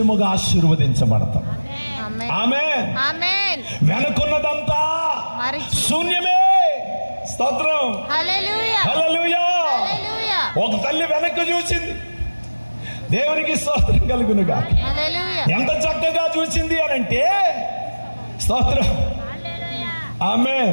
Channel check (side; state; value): both; inverted; correlation -1.00